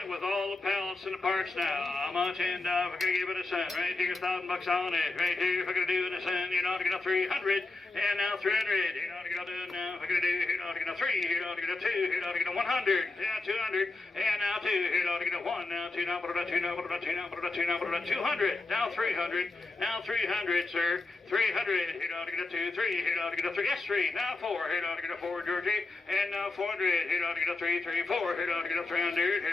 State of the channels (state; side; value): quieter; right; 3.3 dB